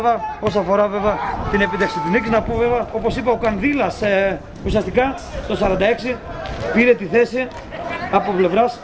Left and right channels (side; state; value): both; identical; correlation 1.00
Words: όσον αφορά βέβαια την επίτευξη της νίκης. Να πω βέβαια όπως είπα ο Κανδύλας ουσιαστικά το 46 πήρε τη θέση από πλευράς.